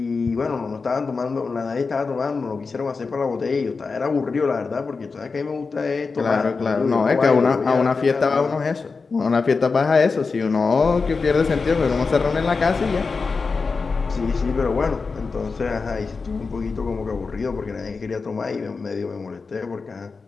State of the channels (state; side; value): quieter; right; 4.5 dB